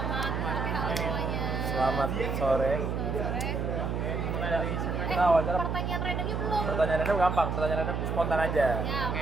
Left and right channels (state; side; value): noise; right; hum, 1 dB below the sound